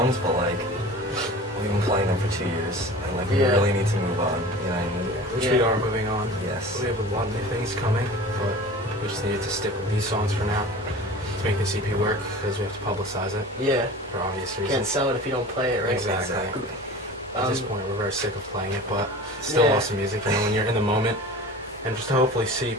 but we've been playing them for 2 years, and we Yeah. really need to move on. You know what I mean? Which Yeah. we are moving on. Yes. We have a lot of new things coming, but we just needed to stick with these songs for now to make this EP work because we have to publicize it Yeah. for obvious Can't reasons. sell it if you don't play it, right? Exactly. At this point, we're very sick of playing it, but it's still Yeah. awesome music. You know, when you're in the moment, and just to hopefully see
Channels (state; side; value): normal; both; correlation 0.38